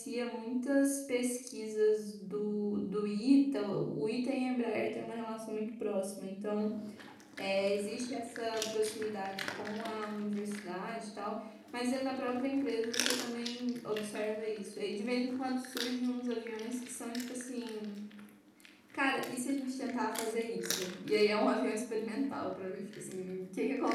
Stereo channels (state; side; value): identical; both; correlation 1.00